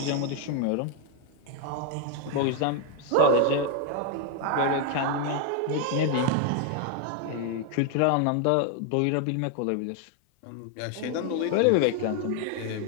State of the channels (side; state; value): both; different; correlation 0.01